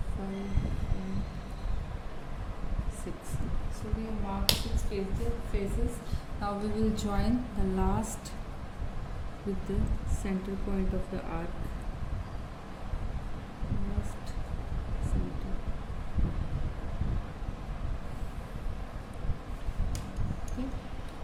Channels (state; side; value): identical; both; correlation 1.00